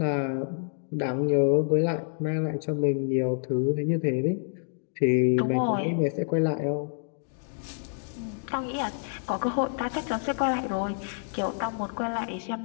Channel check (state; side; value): silent; right; digital silence